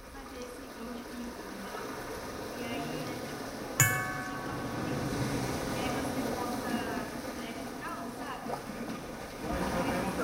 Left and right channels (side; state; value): both; identical; correlation 1.00